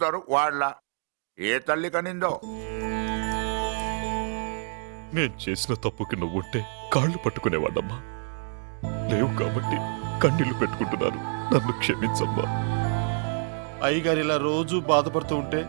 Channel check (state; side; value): silent; left; digital silence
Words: వాళ్ళ. ఏ తల్లి కనిందో. నేను చేసిన తప్పుకి నువ్వుంటే కాళ్ళు పట్టుకునేవాడమ్మా. లేవు కాబట్టి కన్నీళ్లు పెట్టుకుంటున్నాను. నన్ను క్షమించమ్మా. అయ్యగారు ఇలా రోజు బాధపడుతూ ఉంటే